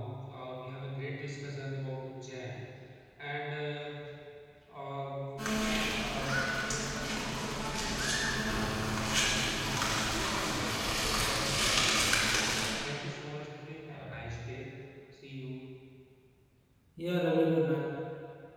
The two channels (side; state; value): both; identical; correlation 1.00